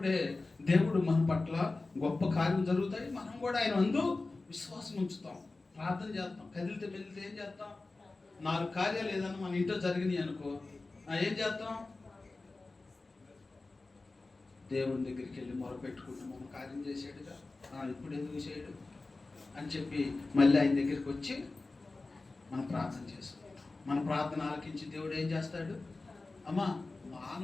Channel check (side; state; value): right; quieter; 3.4 dB